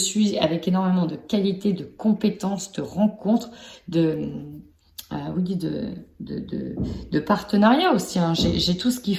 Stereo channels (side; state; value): both; identical; correlation 1.00